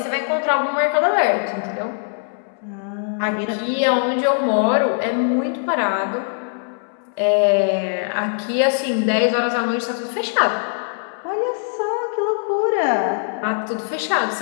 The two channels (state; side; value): silent; right; 65 dB below the other